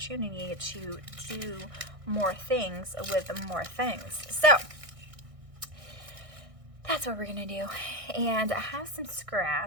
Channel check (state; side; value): late; left; 1.6 ms